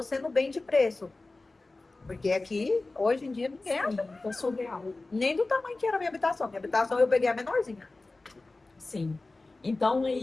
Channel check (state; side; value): quieter; right; 3.3 dB